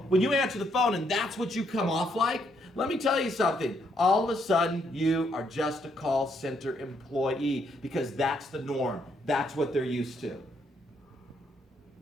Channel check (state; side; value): normal; both; correlation 0.73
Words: when you answer the phone and that's what you come off like, let me tell you something. All of a sudden, you are just a call center employee because that's the norm. That's what they're used to.